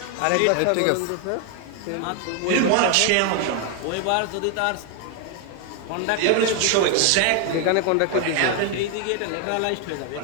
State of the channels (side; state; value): both; different; correlation 0.01